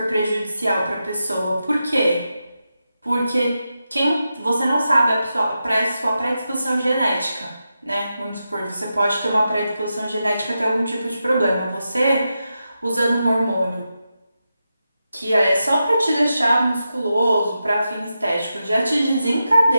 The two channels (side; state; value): both; inverted; correlation -0.89